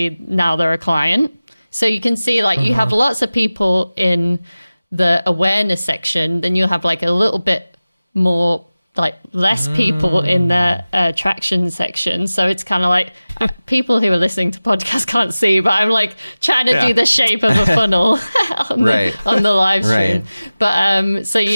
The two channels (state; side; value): inverted; both; correlation -0.97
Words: now they're a client. So you can see you have lots of people in the awareness section, then you'll have a little bit more less people in the attraction section. So it's kind of people who are listening to podcasts can't see, but I'm trying to do the shape of a funnel on the live stream. Right. But so